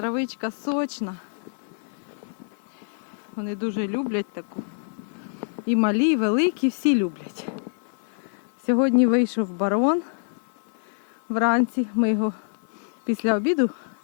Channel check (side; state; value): right; silent; 61 dB below the other